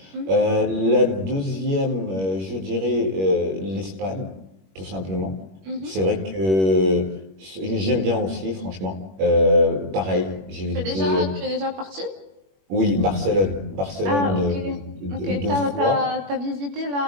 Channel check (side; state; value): left; late; 21 ms